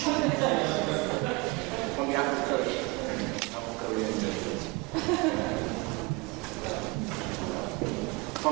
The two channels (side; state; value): left; quieter; 26.9 dB